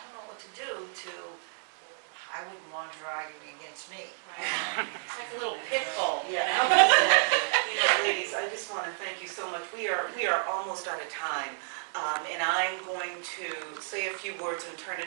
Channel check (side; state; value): left; silent; digital silence